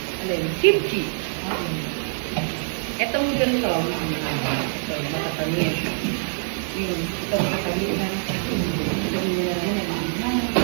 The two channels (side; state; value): left; silent; digital silence